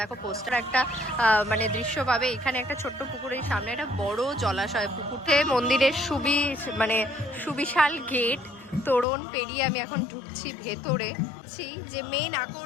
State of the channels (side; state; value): right; drops out; at 9.1 s